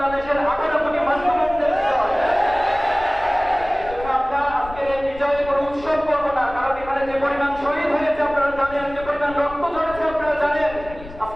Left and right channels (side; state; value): left; noise; rumble, 16 dB below the sound